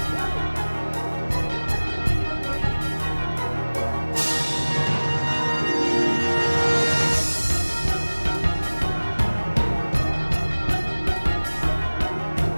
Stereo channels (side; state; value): both; inverted; correlation -1.00